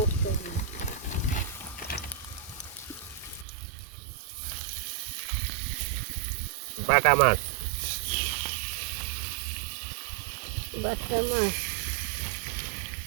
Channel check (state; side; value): drops out; left; at 3.5 s